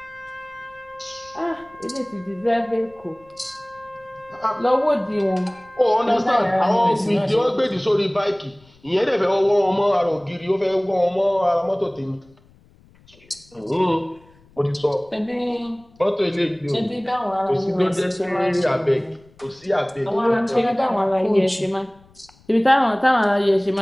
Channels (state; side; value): noise; left; rumble, 29 dB below the sound